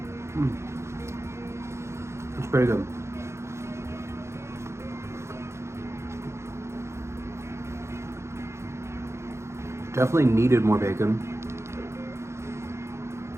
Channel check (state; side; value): late; left; 0.13 ms